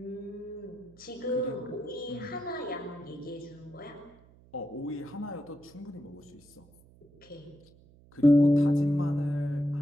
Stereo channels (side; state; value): right; noise; hum, 26 dB below the sound